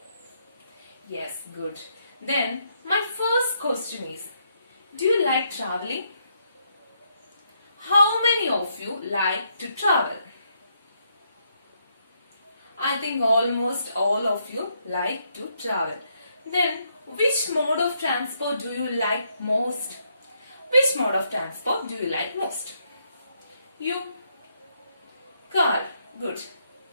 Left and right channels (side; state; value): both; inverted; correlation -0.75